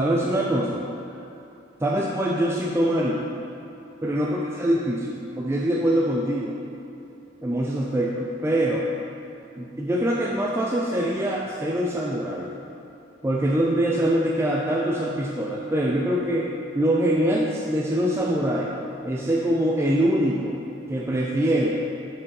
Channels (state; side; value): normal; both; correlation 0.69